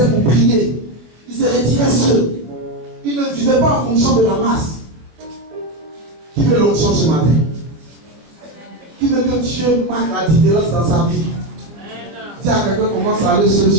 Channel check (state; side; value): late; left; 24 ms